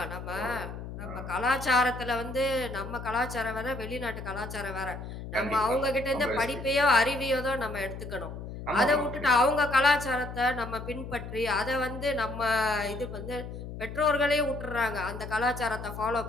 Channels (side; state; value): left; noise; hum, 9 dB below the sound